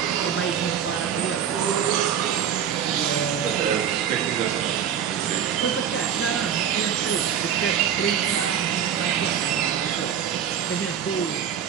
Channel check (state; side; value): quieter; left; 8.7 dB